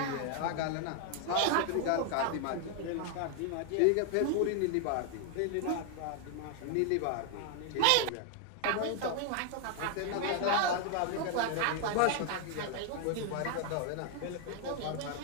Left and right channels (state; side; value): different; both; correlation 0.00